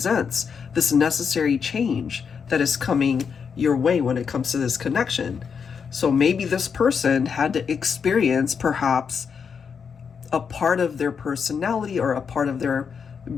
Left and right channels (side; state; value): right; quieter; 6.4 dB